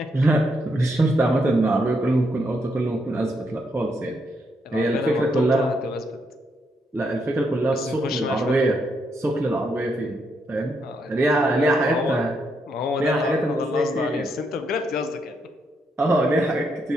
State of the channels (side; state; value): both; normal; correlation 0.78